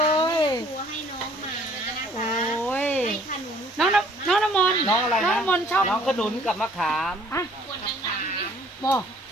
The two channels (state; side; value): normal; both; correlation 0.58